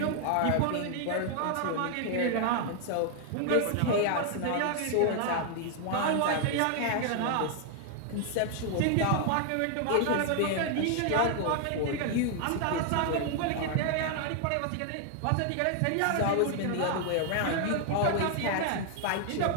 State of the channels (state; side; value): different; both; correlation 0.00